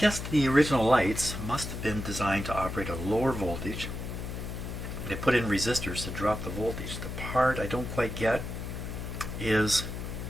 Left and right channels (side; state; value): left; noise; hum, 6 dB below the sound